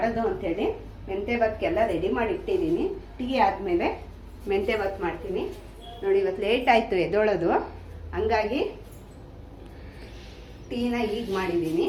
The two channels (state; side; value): identical; both; correlation 1.00